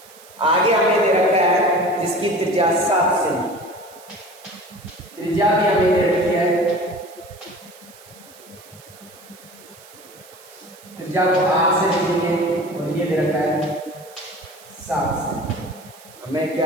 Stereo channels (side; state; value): right; noise; hiss, 23 dB below the sound